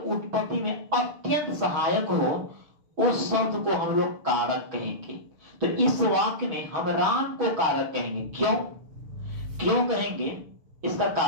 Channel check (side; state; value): left; late; 6.2 ms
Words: में अत्यंत सहायक हो उस शब्द को हम लोग कारक कहेंगे। तो इस वाक्य में हम राम को कारक कहेंगे। क्यों कहेंगे? इसका